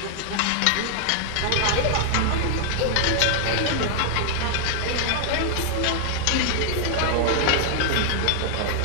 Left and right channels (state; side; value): different; both; correlation -0.01